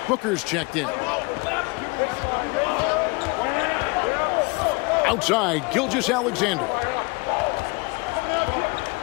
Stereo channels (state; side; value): quieter; right; 28.3 dB